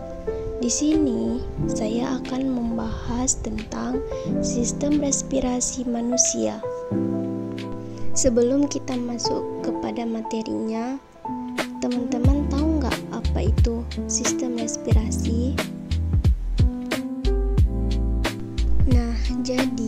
Di sini saya akan membahas tentang sistem respirasi manusia. Sebelum kita masuk kepada materinya, teman-teman tahu nggak apa itu sistem respirasi?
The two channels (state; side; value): identical; both; correlation 1.00